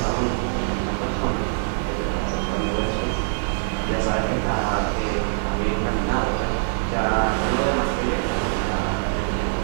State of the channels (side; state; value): left; silent; digital silence